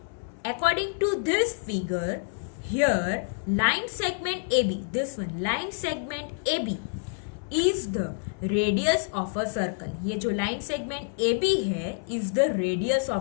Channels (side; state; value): right; silent; 60 dB below the other